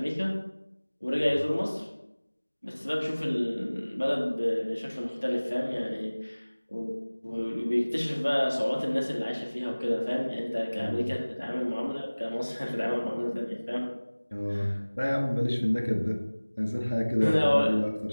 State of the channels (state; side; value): inverted; both; correlation -1.00